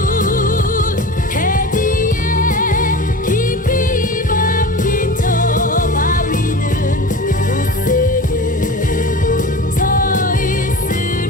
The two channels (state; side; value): normal; both; correlation 0.33